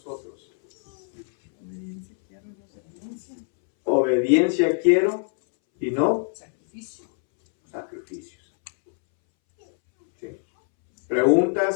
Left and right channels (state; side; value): silent; right; 63 dB below the other